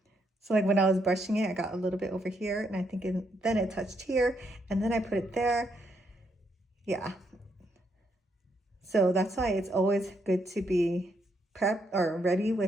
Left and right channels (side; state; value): both; normal; correlation 0.76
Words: So like when I was brushing it, I got a little bit over here, and I think then it touched here, and then I put it there. Yeah. So that's why it's always good to be prepped or ready